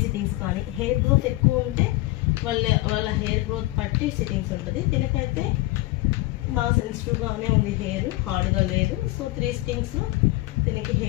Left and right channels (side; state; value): right; quieter; 19.3 dB